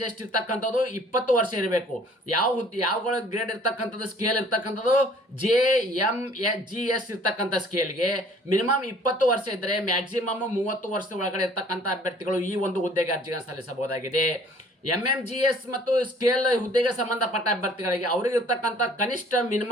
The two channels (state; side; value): normal; both; correlation 0.54